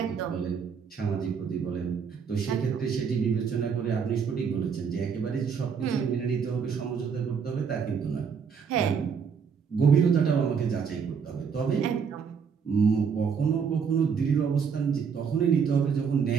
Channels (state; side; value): quieter; left; 6.4 dB